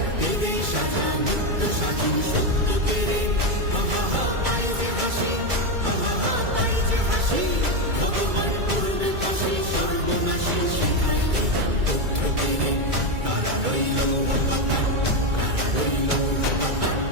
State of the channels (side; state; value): left; late; 2.3 ms